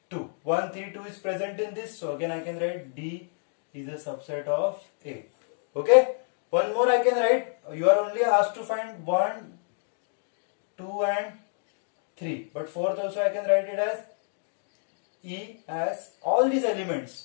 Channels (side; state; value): right; silent; digital silence